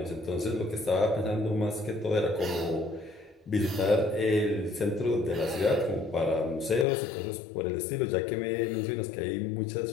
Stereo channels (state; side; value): drops out; right; at 6.9 s